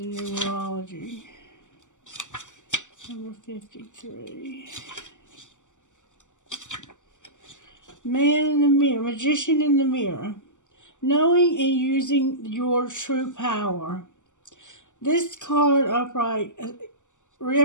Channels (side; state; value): right; late; 0.86 ms